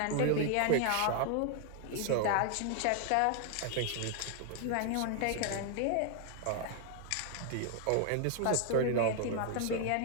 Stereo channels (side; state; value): both; different; correlation 0.00